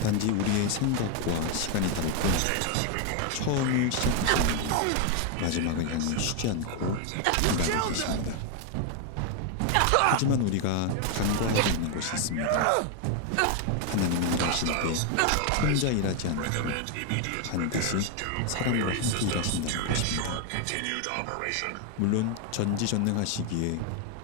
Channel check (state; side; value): different; both; correlation 0.01